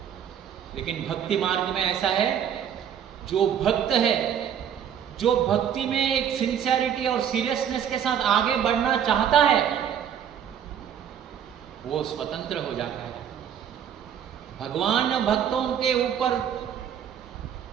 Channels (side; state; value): left; quieter; 8.9 dB